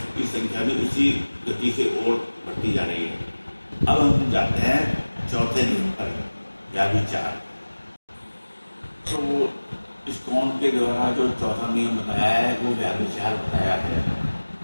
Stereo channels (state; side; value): inverted; both; correlation -1.00